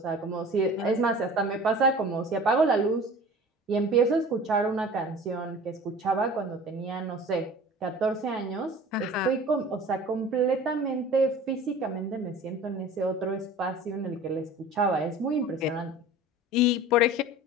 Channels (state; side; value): normal; both; correlation 0.41